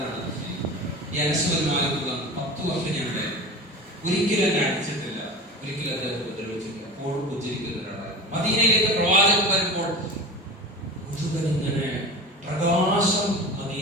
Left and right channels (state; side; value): normal; both; correlation 0.31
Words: ഈ അനസ് ബിൻ മാലിക് 10 വർഷം ഞാൻ ഒരിക്കലും എന്നെ അടിച്ചിട്ടില്ല, ഒരിക്കലും അദ്ദേഹം ഉപദ്രവിച്ചിട്ടില്ല. എപ്പോഴും ഉച്ചരിക്കുന്ന ഒരാളായിരുന്നു. മദീനയിലേക്ക് പ്രവാചകൻ വരുമ്പോൾ മുഴുവൻ ഇങ്ങനെ പ്രകാശം